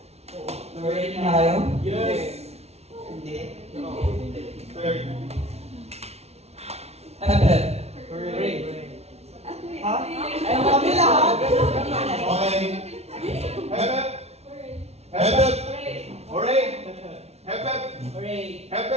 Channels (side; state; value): left; late; 0.31 ms